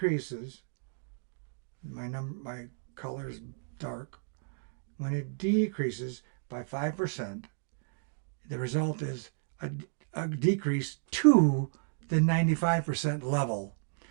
my color is dark, when it decreases by 5%, the result is a decrease to the 95% level.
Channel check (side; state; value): left; silent; digital silence